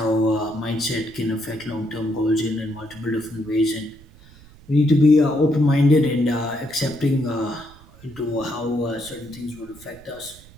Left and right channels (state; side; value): noise; right; rumble, 22 dB below the sound